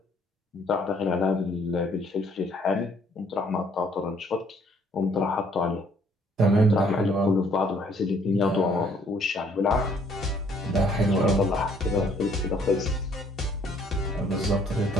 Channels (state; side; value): normal; both; correlation 0.63